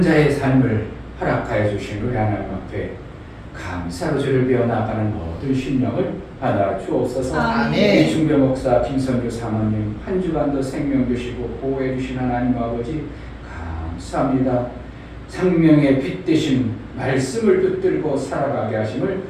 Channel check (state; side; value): identical; both; correlation 1.00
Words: 자의 삶을 허락하여 주신 우리 하나님 앞에 감사로 주를 배워나가는 모든 심령을 받아 주옵소서. 아멘. 이 중배 목사 김선주 사모님 한 주간도 생명 주시고 보호해 주신 하나님 아버지 감사합니다. 생명의 빛 되신 말씀을 붙들고 살아가게 하심을